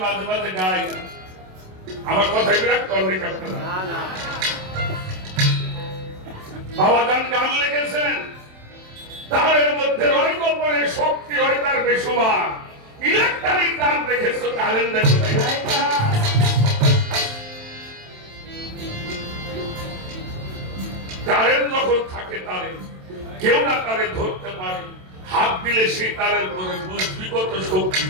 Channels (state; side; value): late; left; 27 ms